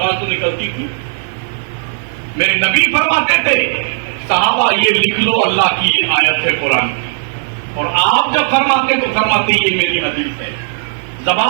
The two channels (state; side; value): silent; left; digital silence